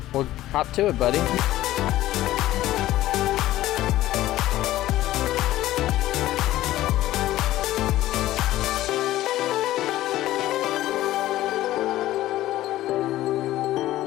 Well, hop to it, buddy.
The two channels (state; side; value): quieter; right; 15.0 dB